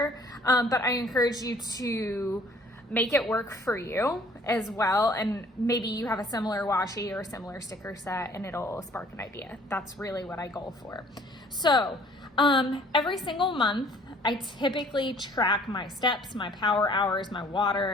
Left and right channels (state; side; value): normal; both; correlation 0.56